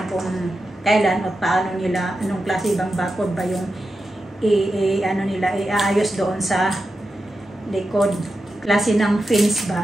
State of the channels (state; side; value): normal; both; correlation 0.90